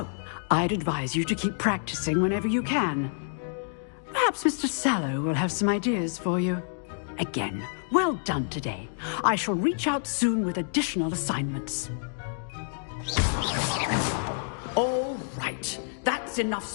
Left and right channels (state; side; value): silent; right; digital silence